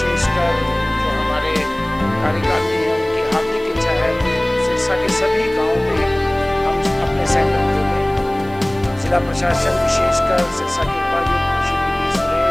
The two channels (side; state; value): right; noise; hiss, 26 dB below the sound